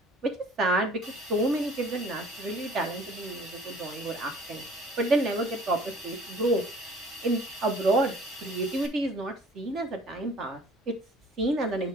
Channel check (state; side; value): normal; both; correlation 0.51